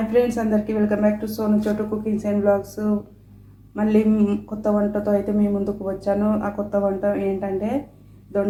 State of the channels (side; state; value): both; identical; correlation 1.00